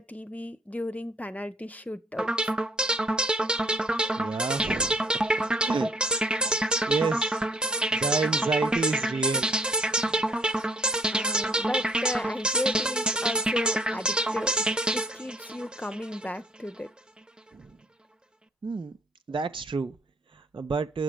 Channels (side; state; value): both; normal; correlation 0.61